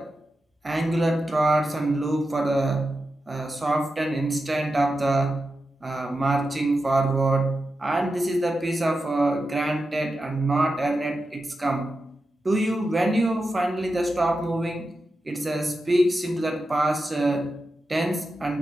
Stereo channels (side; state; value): both; normal; correlation 0.90